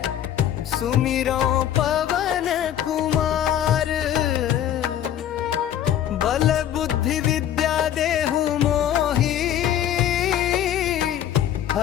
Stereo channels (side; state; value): right; quieter; 10.8 dB